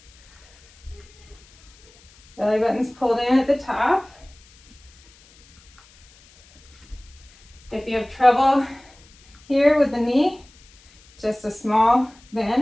Belly button's pulled in at the top. If you have trouble here with the knee, just a small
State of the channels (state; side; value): noise; left; hiss, 27 dB below the sound